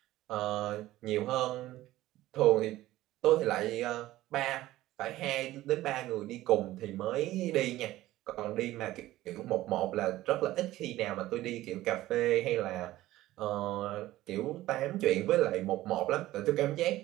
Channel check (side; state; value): left; quieter; 15.9 dB